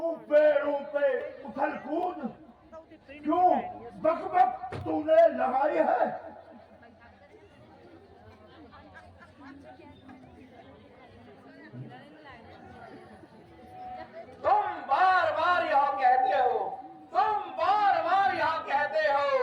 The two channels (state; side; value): identical; both; correlation 1.00